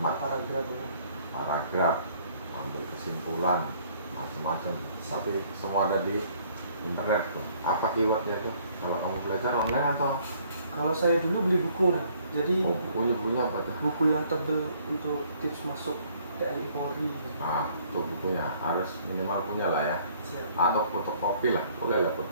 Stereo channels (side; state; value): both; inverted; correlation -0.61